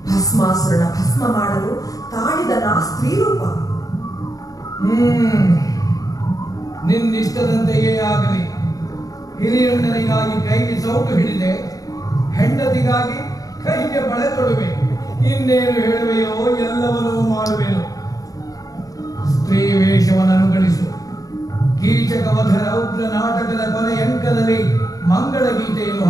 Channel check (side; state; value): right; late; 0.17 ms